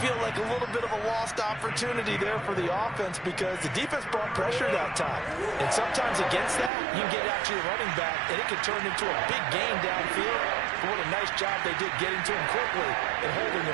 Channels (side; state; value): left; drops out; at 6.7 s